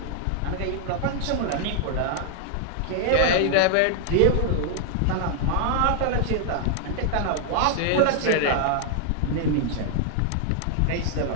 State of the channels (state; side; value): different; both; correlation 0.00